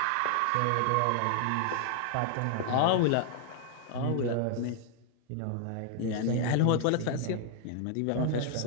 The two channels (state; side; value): different; both; correlation 0.00